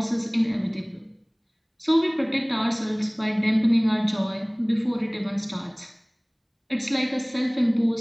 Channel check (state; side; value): identical; both; correlation 1.00